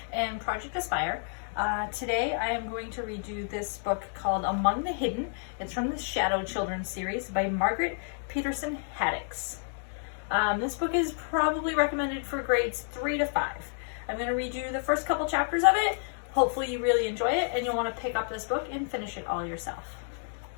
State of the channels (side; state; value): right; silent; digital silence